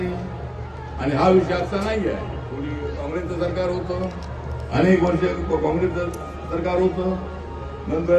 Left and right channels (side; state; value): both; identical; correlation 1.00